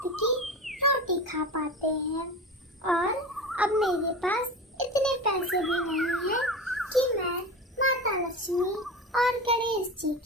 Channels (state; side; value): normal; both; correlation 0.28